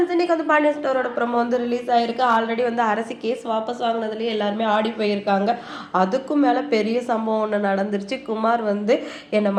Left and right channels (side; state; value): both; identical; correlation 1.00